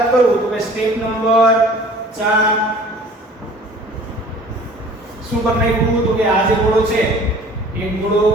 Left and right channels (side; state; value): both; normal; correlation 0.48